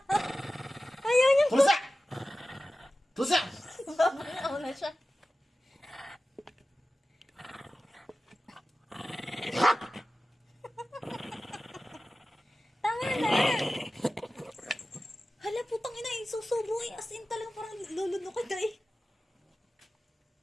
Ayaw niya. Tulsa! Tulsa! Bangaw na siya. Tama na. Hala, putang ina, susubo eh. As in talagang parang lulunok ka eh.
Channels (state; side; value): normal; both; correlation 0.95